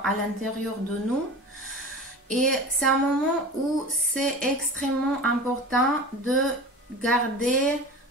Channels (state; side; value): normal; both; correlation 0.34